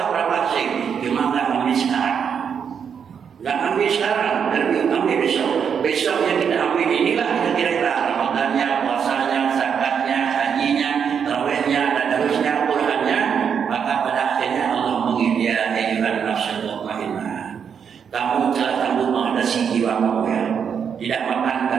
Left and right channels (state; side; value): quieter; left; 7.2 dB